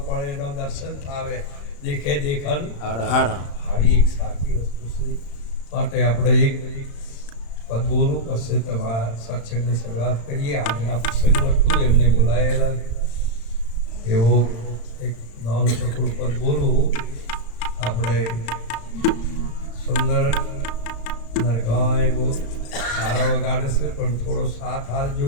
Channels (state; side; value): late; right; 35 ms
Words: પળ એનો દર્શન થાવે, દેખે દેખન આવી એક સાચી વસ્તુ છે. માટે આપણે એક પદ બોલું પછી તમારા સત્સંગની શરૂઆત કરીએ. આજના પ્રસંગ હતું એમને બોલાયેલા એવો એક નાનું ટુકડું પદ બોલું. આપણે સુંદર નરગાય બહુ સારા વગાડે છે પણ થોડો સાથ હાલજો